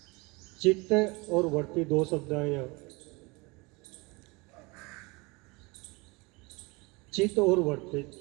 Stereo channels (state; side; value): quieter; left; 26.1 dB